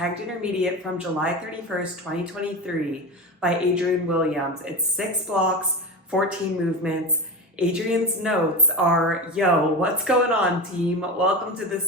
intermediate from July 31st, 2023 by Adrian Williams. It's 6 blocks, 14 movements. Adrian's notes are, yo, what's going on, team? Welcome to the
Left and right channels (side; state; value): both; normal; correlation 0.23